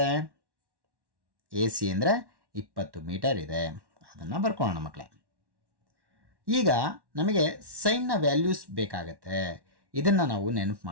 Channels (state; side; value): late; left; 1.1 ms